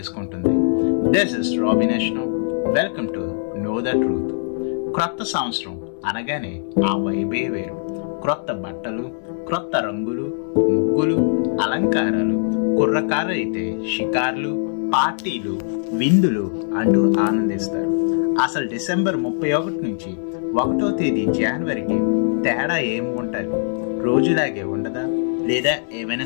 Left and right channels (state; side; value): silent; right; 65 dB below the other